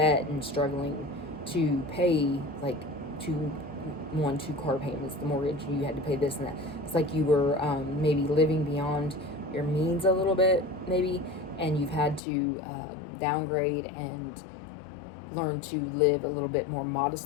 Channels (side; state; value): right; drops out; at 12.2 s